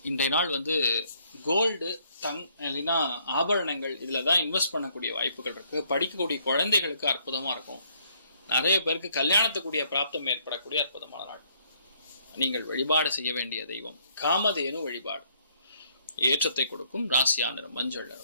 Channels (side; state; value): both; inverted; correlation -0.67